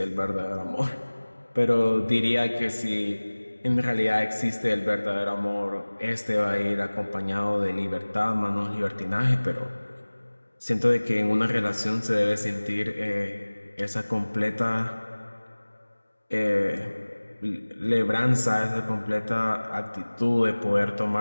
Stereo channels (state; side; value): inverted; both; correlation -1.00